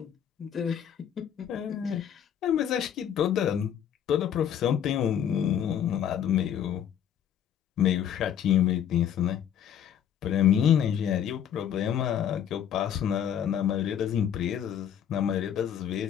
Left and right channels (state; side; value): quieter; right; 9.3 dB